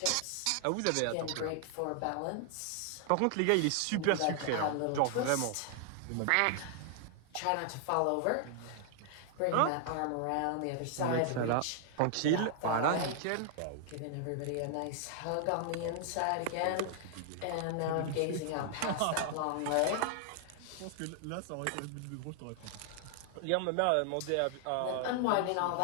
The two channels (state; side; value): different; both; correlation 0.00